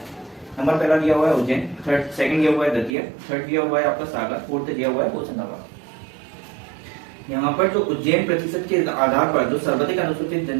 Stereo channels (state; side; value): drops out; left; at 2.9 s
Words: नंबर पहला दिया हुआ है उज्जैन, सेकंड दिया हुआ है दतिया, थर्ड दिया हुआ है आपका सागर, फोर्थ दिया हुआ है होशंगाबाद। यहाँ पर जो उज्जैन प्रतिशत के आधार पर जो सर्वाधिक अनुसूचित